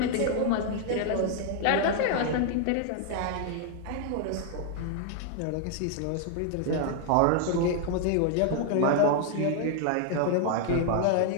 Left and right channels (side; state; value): both; different; correlation 0.00